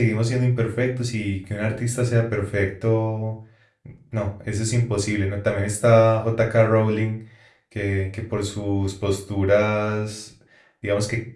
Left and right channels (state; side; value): identical; both; correlation 1.00